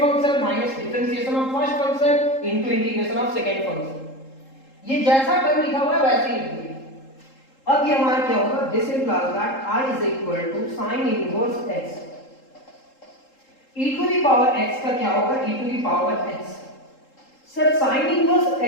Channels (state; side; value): late; right; 3.8 ms